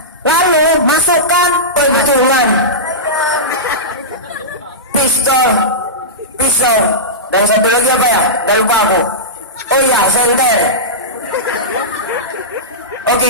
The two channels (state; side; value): normal; both; correlation -0.15